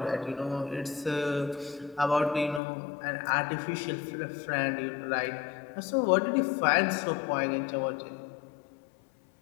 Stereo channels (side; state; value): right; drops out; at 2.6 s